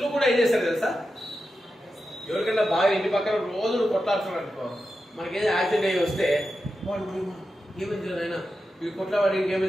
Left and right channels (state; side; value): normal; both; correlation 0.90